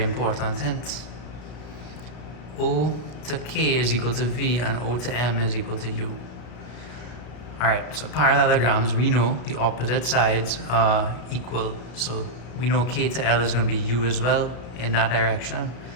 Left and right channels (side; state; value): right; late; 33 ms